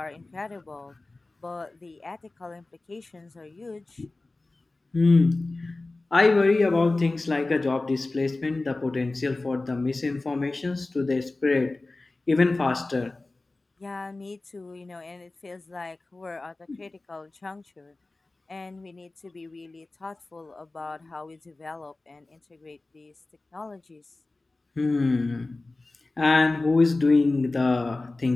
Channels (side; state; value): right; quieter; 3.2 dB